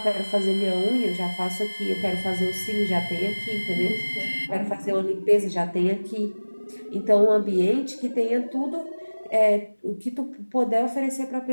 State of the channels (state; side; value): inverted; both; correlation -1.00